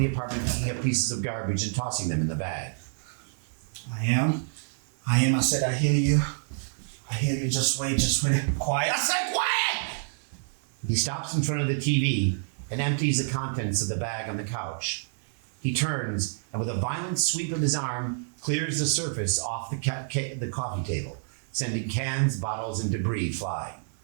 apartment picking up pieces of garbage and tossing them in the bag. I am. I said, I hear you. I hear you. Just wait. Quiet. I said quiet! He stops in front of the TV and empties the contents of the bag on the couch. He turns and with a violent sweep of his arm, clears the surface off the coffee table, sending cans, bottles, and debris flying.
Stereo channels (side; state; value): left; silent; 59 dB below the other